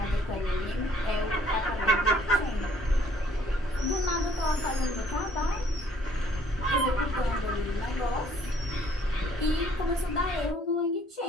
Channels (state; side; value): normal; both; correlation 0.61